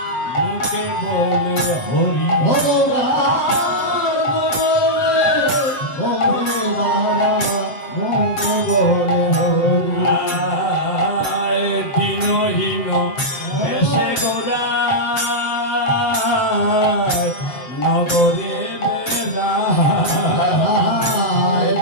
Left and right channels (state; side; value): late; right; 7.8 ms